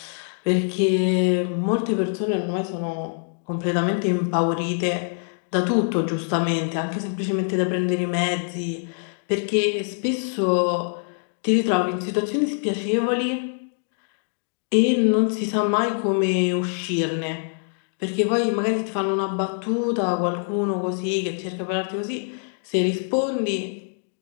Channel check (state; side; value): silent; right; 62 dB below the other